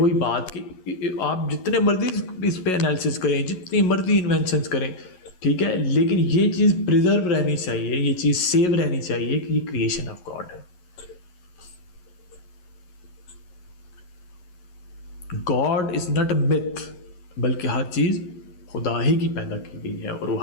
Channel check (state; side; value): late; right; 11 ms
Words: بات کہ آپ جتنے مرضی اس پہ انالیسز کریں, جتنی مرضی انوینشنز کریں, ٹھیک ہے, لیکن یہ چیز پریزرو رہنی چاہیے, یہ چیز سیو رہنی چاہیے کہ یہ کریشن آف گاڈ ہے. God is not a myth, بلکہ ہر چیز خدا ہی کی پیدا کی گئی ہے اور